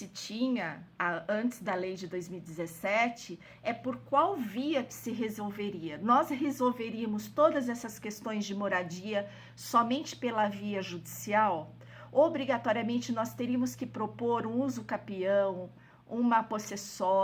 tinha antes da lei de 2017 é por qual via que se resolveria. Nós resolveríamos todas essas questões de moradia somente pela via judicial? Obrigatoriamente nós teríamos que propor um uso capião, uma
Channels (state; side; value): identical; both; correlation 1.00